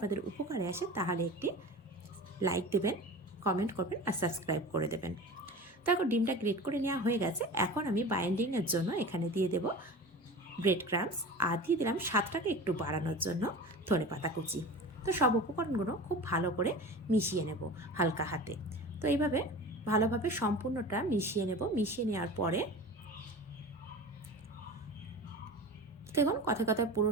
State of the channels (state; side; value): normal; both; correlation 0.34